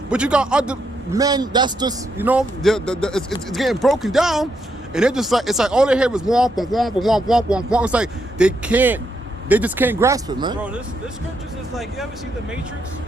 But you got other men that's just, you know, it's getting broken down, and they're just like, it's like all they hear is womp, womp, womp, womp, womp, womp. It's like they just can't grasp it, man. Bro, this scriptures is like, you ever see the Matrix?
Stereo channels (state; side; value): normal; both; correlation 0.79